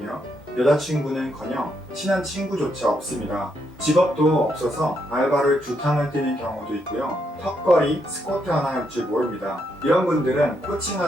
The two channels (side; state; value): both; normal; correlation 0.78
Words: 여자친구는커녕 친한 친구조차 없습니다. 직업도 없어서 알바를 2탕을 뛰는 경우도 있고요. 턱걸이, 스쿼트 하나 할 줄 모릅니다. 이런 분들은